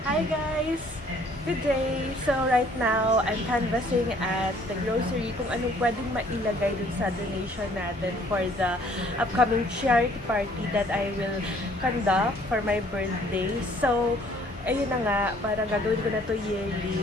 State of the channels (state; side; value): normal; both; correlation 0.59